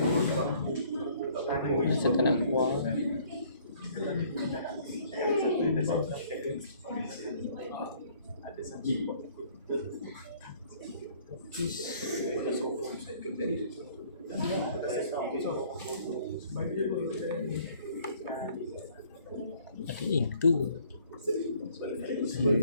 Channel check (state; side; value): inverted; both; correlation -0.59